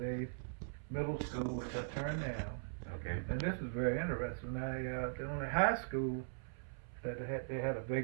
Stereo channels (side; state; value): left; silent; 51 dB below the other